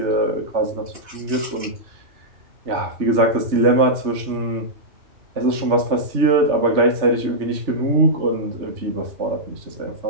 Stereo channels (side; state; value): left; late; 3.3 ms